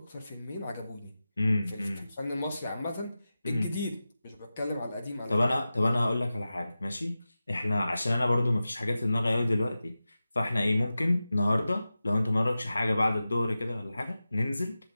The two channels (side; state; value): both; inverted; correlation -0.94